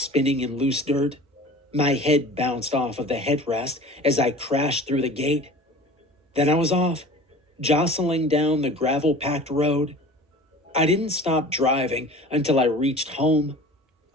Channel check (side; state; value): both; normal; correlation 0.41